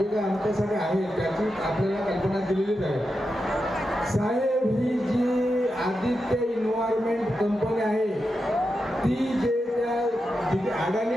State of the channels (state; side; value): normal; both; correlation 0.88